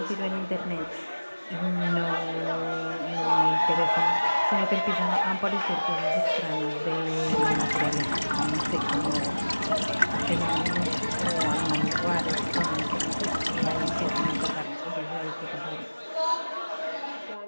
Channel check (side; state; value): both; inverted; correlation -1.00